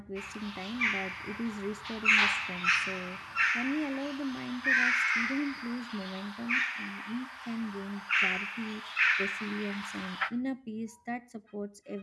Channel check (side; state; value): both; identical; correlation 1.00